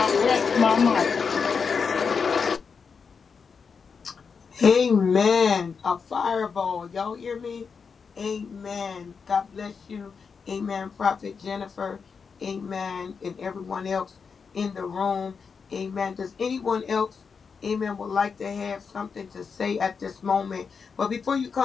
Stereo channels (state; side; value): quieter; right; 5.7 dB